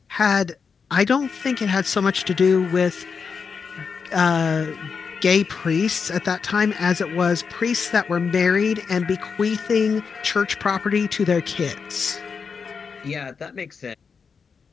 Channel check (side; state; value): right; quieter; 5.7 dB